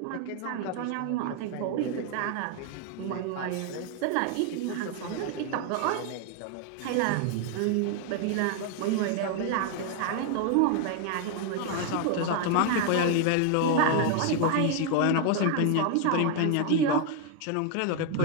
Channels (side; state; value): both; different; correlation 0.00